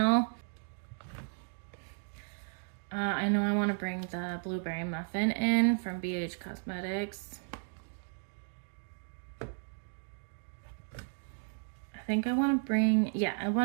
I know I want to bring the Blueberry Muffin in from BH Cosmetics. I think I want to bring, yeah, I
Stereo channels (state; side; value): silent; left; 55 dB below the other